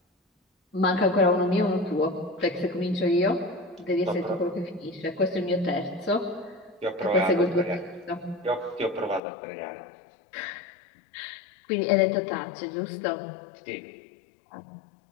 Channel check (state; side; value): drops out; right; at 9.2 s